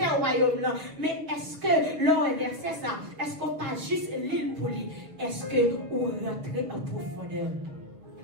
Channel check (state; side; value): late; left; 6.8 ms